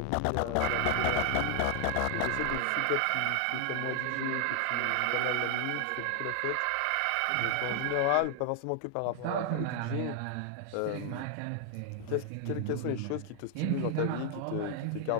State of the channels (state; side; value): different; both; correlation 0.00